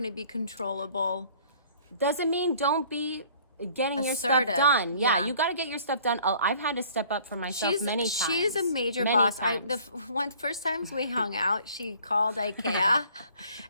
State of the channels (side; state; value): both; inverted; correlation -0.54